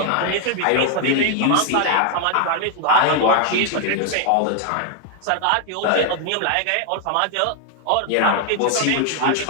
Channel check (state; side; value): different; both; correlation 0.00